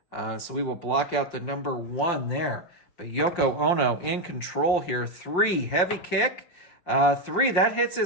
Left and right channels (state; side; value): late; right; 5.7 ms